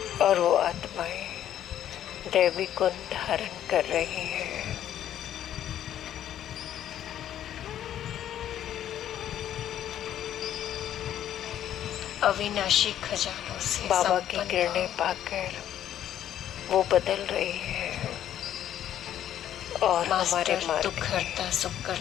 और वो आत्माएं दैवी गुण धारण कर रही हैं। अविनाशी खजानों से बाबा की संपन्न किरणें भाव। पाकर वो बदल रही है और हमारे मास्टर मार्ग दुख हरता सुख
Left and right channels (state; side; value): quieter; right; 11.1 dB